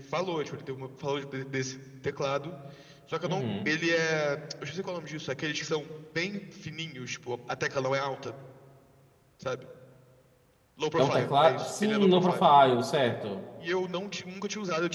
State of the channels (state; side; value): identical; both; correlation 1.00